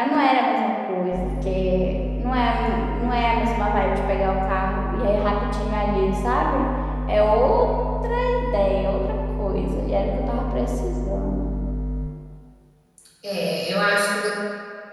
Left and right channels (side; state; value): both; identical; correlation 1.00